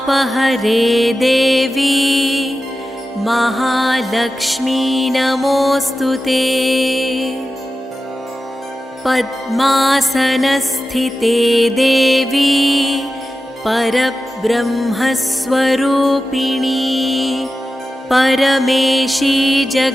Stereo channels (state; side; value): normal; both; correlation 0.93